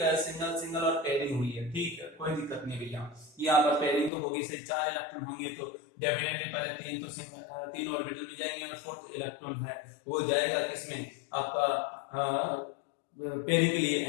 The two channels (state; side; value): drops out; right; at 4.1 s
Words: है, सिंगल और पेयरिंग हुई है, ठीक है कोई दिक्कत नहीं भैया, यहाँ पर पेयरिंग तो होगी, से 4 इलेक्ट्रॉन होंगे तो डेफिनेटली पहले 3 तो 3 ऑर्बिटल में जाएंगे और 4th इलेक्ट्रॉन है वो जाएगा किसमें, आपका पेयरिंग के लिए